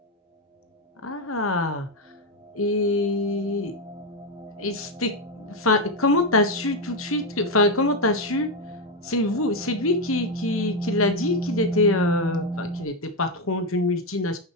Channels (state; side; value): normal; both; correlation 0.07